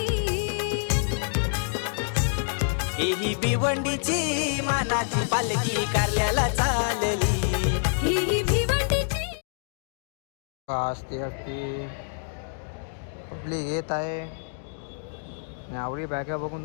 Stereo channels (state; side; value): silent; right; digital silence